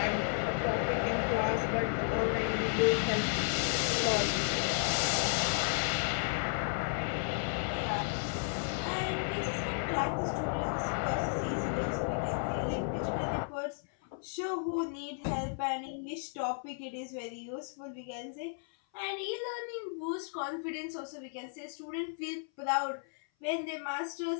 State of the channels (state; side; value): silent; right; 55 dB below the other